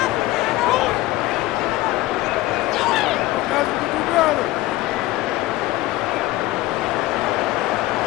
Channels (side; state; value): right; quieter; 17.5 dB